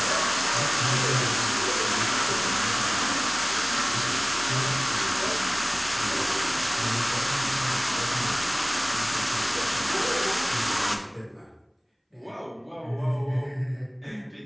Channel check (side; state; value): both; identical; correlation 1.00